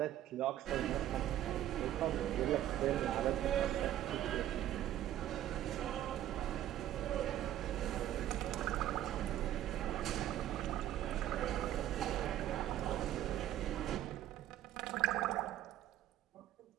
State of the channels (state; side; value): quieter; left; 12.5 dB